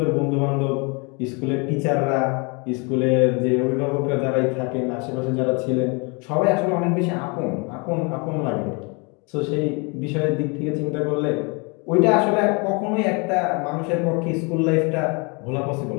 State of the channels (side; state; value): right; quieter; 31.4 dB